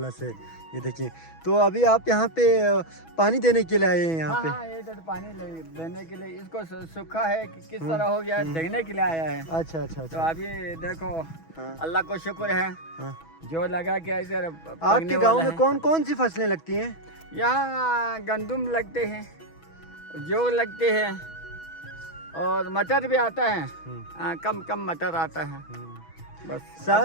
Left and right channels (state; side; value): late; right; 6.1 ms